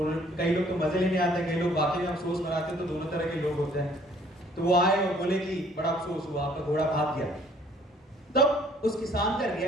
कई लोग तो मजे लेने आते हैं, कई लोग वाकई में अफसोस मनाते हैं, तो दोनों तरह के लोग होते हैं। तो वो आए और बोले कि बड़ा अफसोस हुआ, आपका घोड़ा भाग गया। तब उस किसान का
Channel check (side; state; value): both; normal; correlation 0.59